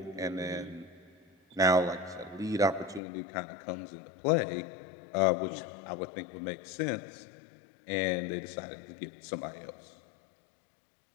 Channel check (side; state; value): right; drops out; at 3.0 s